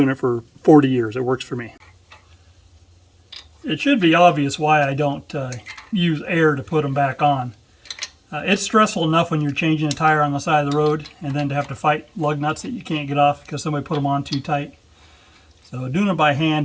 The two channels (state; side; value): identical; both; correlation 1.00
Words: it for 40 years. It works for me. It should be obvious why I don't use air to put them back on. It's stressful enough when you're changing a tire on the side of the road and then to have to fight lug nuts that you can't get off because somebody put them on too tight. So doing it by